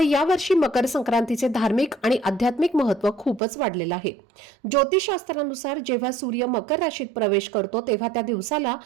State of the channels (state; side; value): drops out; left; at 3.4 s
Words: यावर्षी मकर संक्रांतीचे धार्मिक आणि आध्यात्मिक महत्त्व खूपच वाढलेलं आहे. ज्योतिषशास्त्रानुसार जेव्हा सूर्य मकर राशीत प्रवेश करतो तेव्हा त्या दिवसाला